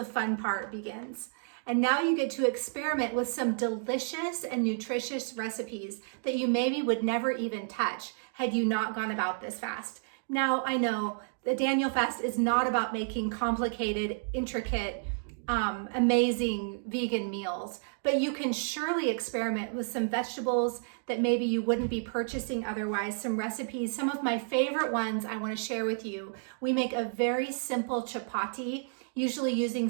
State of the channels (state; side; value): silent; left; digital silence